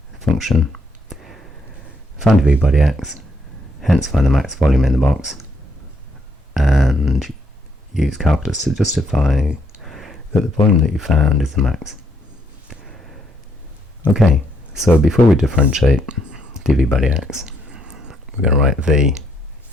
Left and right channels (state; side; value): normal; both; correlation 0.73